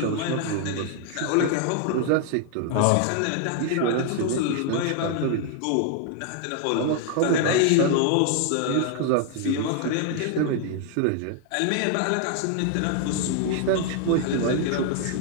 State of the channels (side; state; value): both; different; correlation 0.00